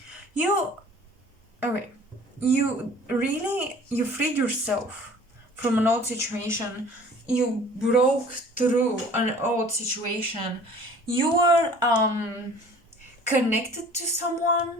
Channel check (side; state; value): both; normal; correlation 0.48